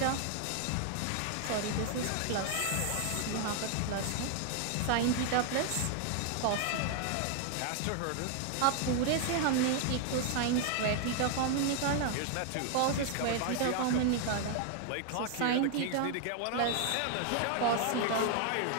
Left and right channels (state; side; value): different; both; correlation 0.00